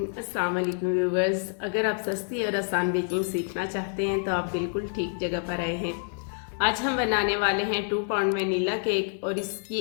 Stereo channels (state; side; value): silent; right; digital silence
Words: अस्सलाम वालेकुम व्यूवर्स। अगर आप सस्ती और आसान बेकिंग सीखना चाहते हैं तो आप बिल्कुल ठीक जगह पर आए हैं। आज हम बनाने वाले हैं 2 पाउंड वनीला केक और इसकी